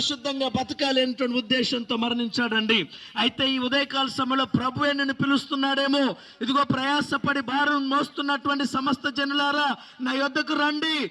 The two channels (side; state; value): both; identical; correlation 1.00